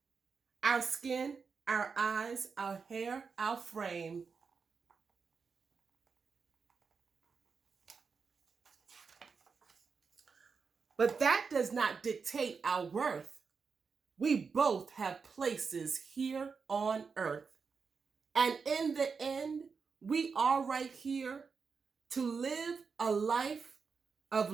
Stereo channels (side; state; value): left; quieter; 5.3 dB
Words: Our skin, our eyes, our hair, our frame. But that does not dictate our worth. We both have places here on earth. And in the end, we are right here to live a life of